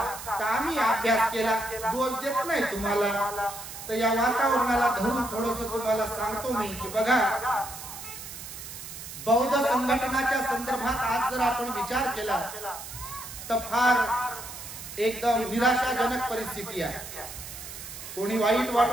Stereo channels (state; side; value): noise; right; hiss, 11 dB below the sound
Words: तर आम्ही अभ्यास केला, दोष देत नाही तुम्हाला. तर या वातावरणाला धरून थोडस तुम्हाला सांगतो मी की बघा, बौद्ध संघटनाच्या संदर्भात आज जर आपण विचार केला तर फार एकदम निराशाजनक परिस्थिती आहे. कोणी वाईट